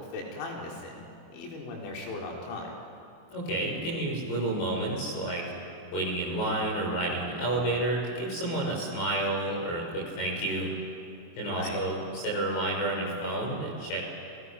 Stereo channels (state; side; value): late; right; 24 ms